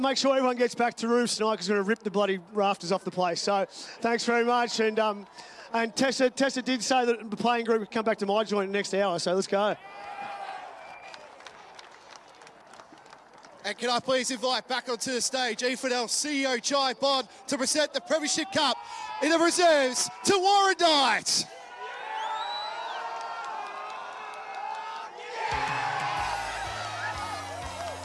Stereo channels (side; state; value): both; identical; correlation 1.00